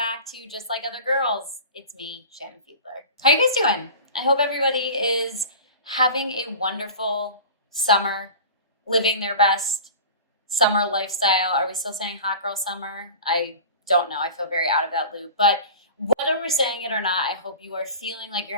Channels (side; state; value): both; inverted; correlation -0.36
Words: to Just Like Other Girls. It's me, Shannon Fiedler. How you guys doing? I hope everybody is having a wonderful summer, living their best summer lifestyle. Are we still saying hot girl summer? I don't know. I feel very out of that loop. But whether we're saying it or not, I hope you are feeling like